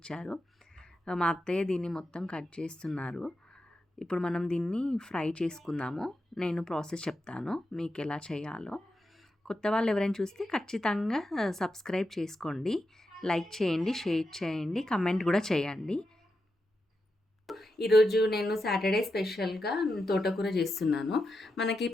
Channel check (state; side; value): normal; both; correlation 0.87